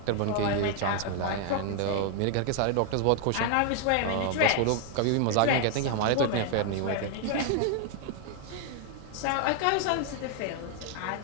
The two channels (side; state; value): both; different; correlation 0.00